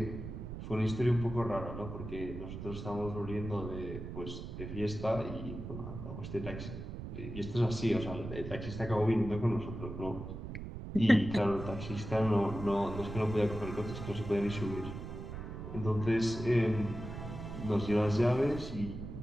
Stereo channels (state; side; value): noise; right; rumble, 8 dB below the sound